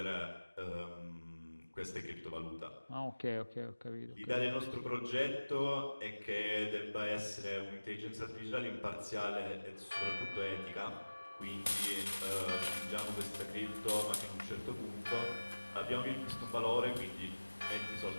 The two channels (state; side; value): inverted; both; correlation -1.00